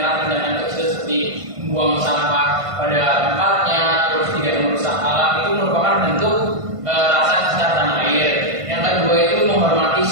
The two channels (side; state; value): left; late; 1.5 ms